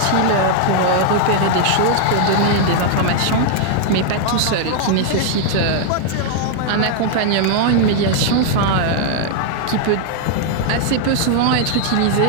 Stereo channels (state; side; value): different; both; correlation 0.00